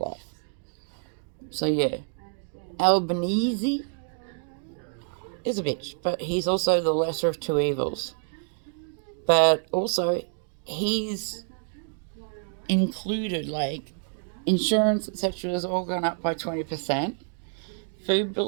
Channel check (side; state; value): left; silent; 57 dB below the other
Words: So, yeah. Albanese is a bitch, but he's also the lesser of two evils. But also, he's included, like, insurance, etc., has all gone up by 20%. Food